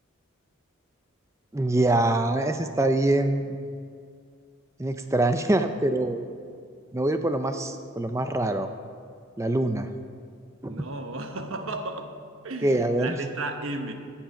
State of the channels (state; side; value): normal; both; correlation 0.70